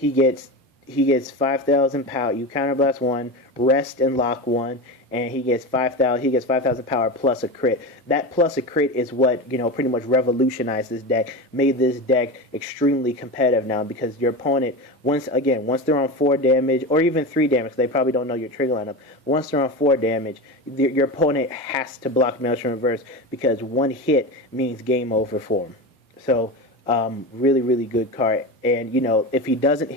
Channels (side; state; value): both; normal; correlation 0.23